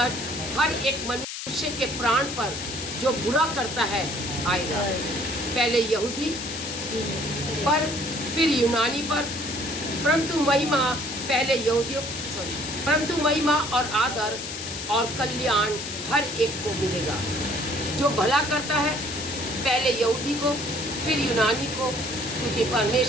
हर एक मनुष्य के प्राण पर जो बुरा करता है आएगा। पहले यहूदी पर, फिर यूनानी पर, परंतु महिमा और आदर और कल्याण हर एक को मिलेगा। जो भला करता है पहले यहूदी को, फिर यूनानी को, क्योंकि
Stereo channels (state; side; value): noise; left; hiss, 7 dB below the sound